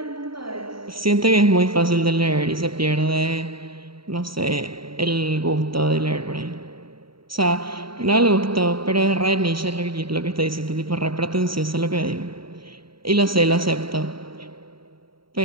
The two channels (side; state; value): left; late; 0.74 ms